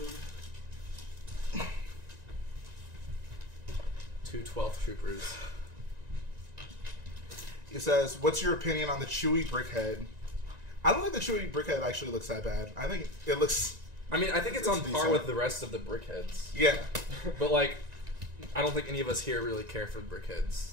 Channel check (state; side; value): late; left; 1.9 ms